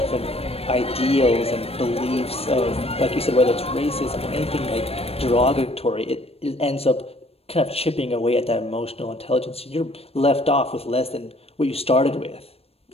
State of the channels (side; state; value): right; late; 0.29 ms